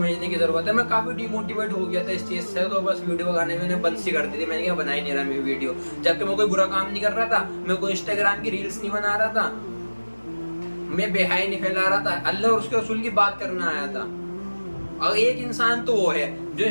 کی ضرورت ہے. میں کافی ڈی موٹیویٹ ہو گیا تھا اس چیز سے، تو بس ویڈیو بنانے میں نے بند سی کر دی تھی. میں نے کہا بنا ہی نہیں رہا میں ویڈیو، جبکہ میں کوئی برا کام نہیں کر رہا تھا، میں کوئی انسٹاگرام کی ریلز نہیں بنا رہا تھا، میں بے حیائی نہیں پھیلا رہا تھا، اللہ اور اس کے رسول کی بات کرنا آیا تھا. اور ایک انسان تو وہ ہے جو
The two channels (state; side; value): inverted; both; correlation -1.00